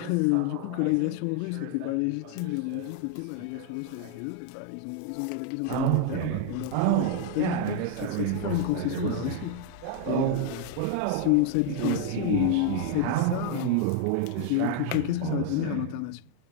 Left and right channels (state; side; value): different; both; correlation 0.00